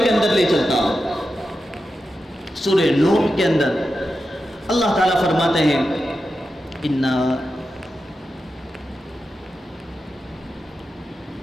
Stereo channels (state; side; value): normal; both; correlation 0.90